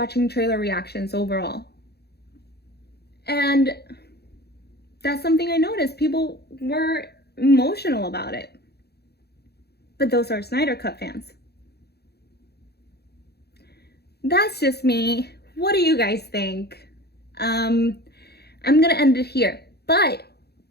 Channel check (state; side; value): late; right; 0.47 ms